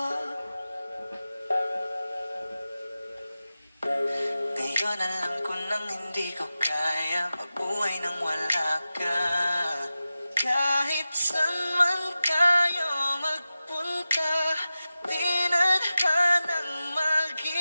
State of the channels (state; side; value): inverted; both; correlation -0.94